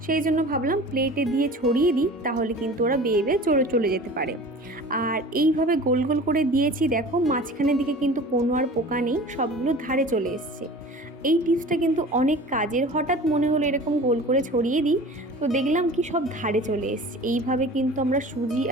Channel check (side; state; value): both; normal; correlation 0.40